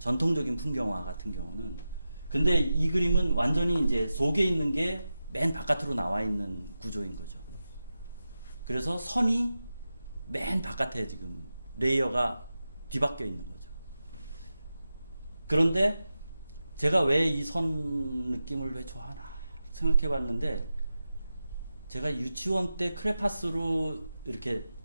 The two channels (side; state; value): both; inverted; correlation -0.92